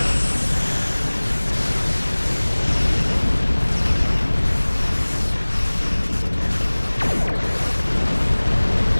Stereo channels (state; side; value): inverted; both; correlation -1.00